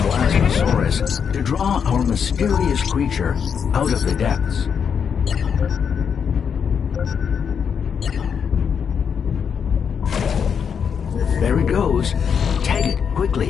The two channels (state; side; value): quieter; right; 7.0 dB